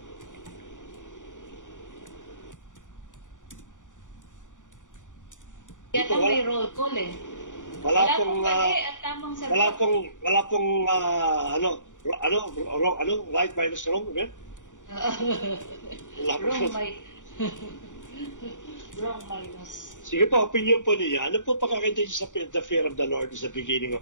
Ito may roll call eh. Wala pong at tamang sagot. Wala pong right minus wrong, right? Wrong, right? Sobrang minus. Sige po, opinion po niya. Ano po pagkakita niyo sa the fear of the Lord is the beginning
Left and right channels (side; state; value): right; late; 0.86 ms